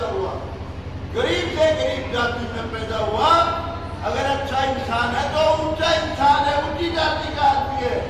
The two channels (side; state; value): both; identical; correlation 1.00